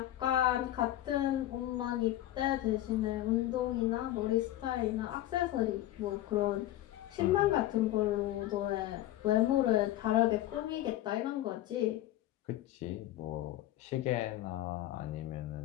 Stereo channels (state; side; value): quieter; right; 14.5 dB